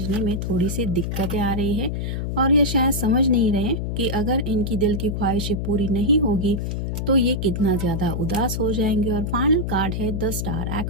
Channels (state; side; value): noise; left; hum, 2 dB below the sound